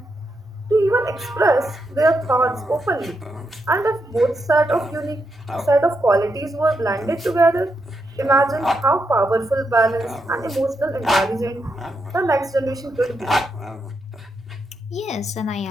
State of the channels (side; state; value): both; normal; correlation 0.83